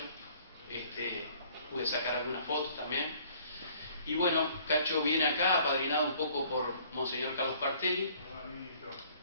pude sacar algunas fotos también. Y bueno, Cacho viene acá, apadrinado un poco por Monseñor Carlos Partelli.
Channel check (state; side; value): inverted; both; correlation -0.57